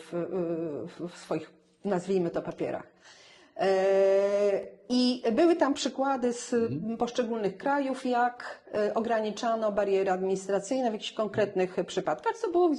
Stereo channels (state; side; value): identical; both; correlation 1.00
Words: w swoich, nazwijmy to, papierach. I były tam przykłady z poszczególnych krajów, jak ograniczano bariery administracyjne w jakichś konkretnych przypadkach, co było